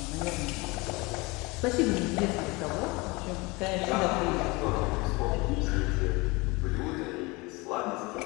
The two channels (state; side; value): quieter; right; 24.8 dB